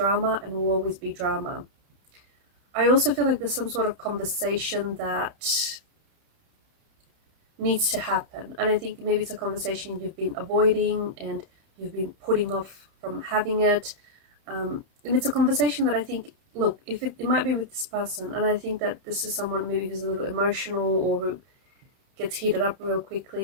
and will always be drama. I also feel like there's some sort of conversation that needs to happen, and I think maybe it's a conversation you've been avoiding and you've been putting off from having it, and it's a conversation that I think, look, if it might be with this person, and I think that this is someone maybe who's a little emotional or who gets heated up real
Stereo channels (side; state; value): left; late; 31 ms